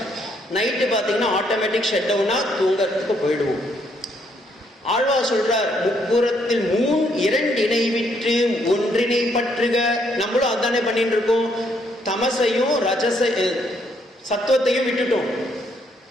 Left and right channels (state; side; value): normal; both; correlation 0.71